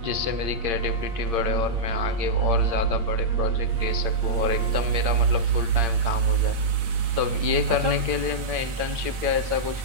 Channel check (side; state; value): left; late; 8.7 ms